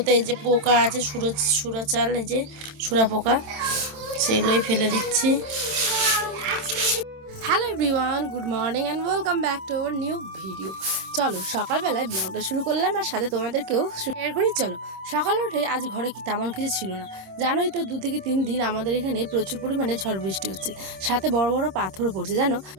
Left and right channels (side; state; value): left; late; 27 ms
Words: এই যে পোকা আছে, সুরা চাল, এই যে সুরা পোকা, সেগুলোই ফেলে দিচ্ছি। Hello everyone, good morning and welcome back to our new video. চলো সকালবেলায় ব্লগটা শুরু করলাম আর সাথে তোমাদেরকেও শেয়ার করি। চলো সকালে উঠে আজ ঘরে কি তেমন কিছু ছিল না, জানোই তো 2 থেকে 3 দিন আমাদের এখানে প্রচুর পরিমাণে ঝড় বৃষ্টি হচ্ছে, সাথে বড় বড় পাথরও পড়ছে। জানো